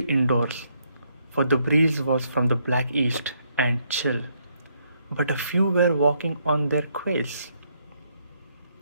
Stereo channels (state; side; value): inverted; both; correlation -0.73